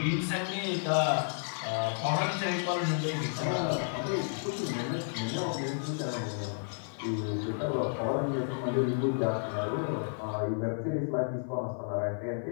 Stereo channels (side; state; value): right; silent; 57 dB below the other